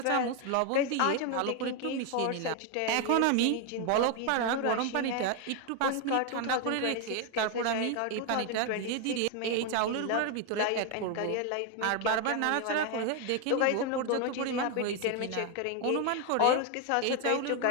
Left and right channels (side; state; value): both; different; correlation 0.01